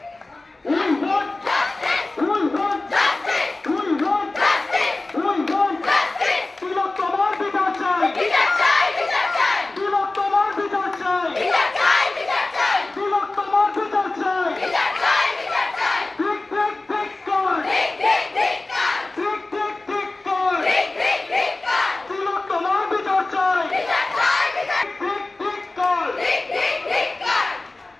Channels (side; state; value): right; quieter; 3.1 dB